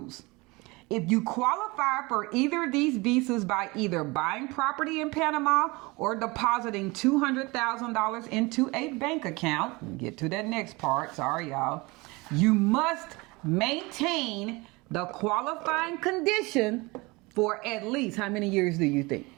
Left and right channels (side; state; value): left; quieter; 24.5 dB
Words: If you qualify for either of these visas by either buying property in Panama or depositing $200,000 into a bank account, we'll get to that next part, sorry y'all, you must maintain the qualifying condition for at least, how many years do you think?